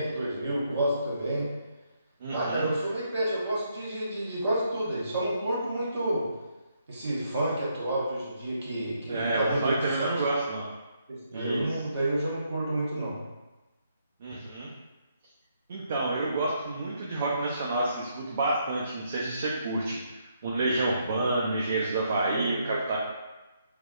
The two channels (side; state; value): both; inverted; correlation -0.75